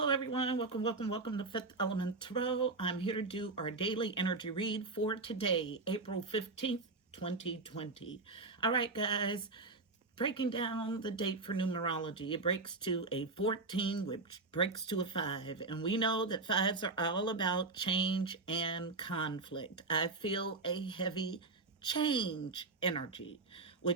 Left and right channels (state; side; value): quieter; left; 3.6 dB